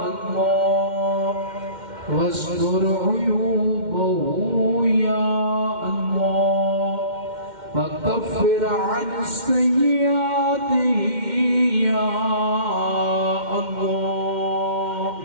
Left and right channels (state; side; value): late; left; 2.1 ms